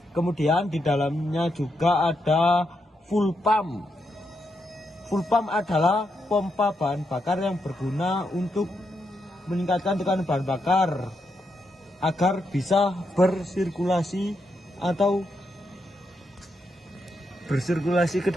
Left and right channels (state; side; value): normal; both; correlation 0.82